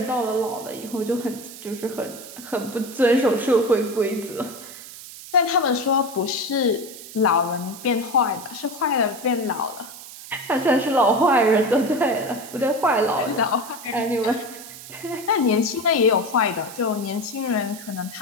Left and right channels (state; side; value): noise; right; hiss, 15 dB below the sound